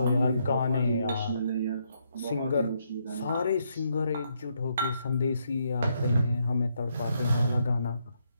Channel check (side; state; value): both; inverted; correlation -0.76